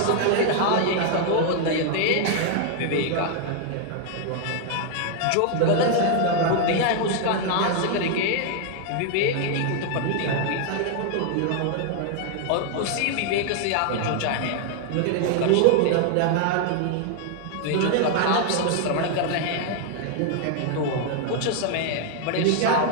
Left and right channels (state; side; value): different; both; correlation 0.00